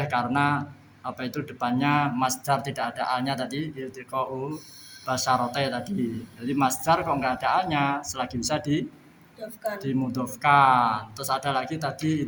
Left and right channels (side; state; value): both; identical; correlation 1.00